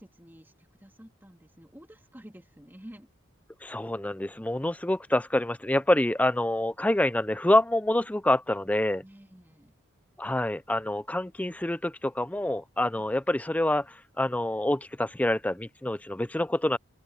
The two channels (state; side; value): normal; both; correlation 0.91